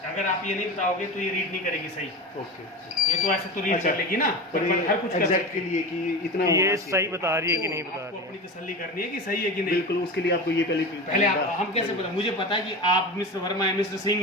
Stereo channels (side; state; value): both; normal; correlation 0.27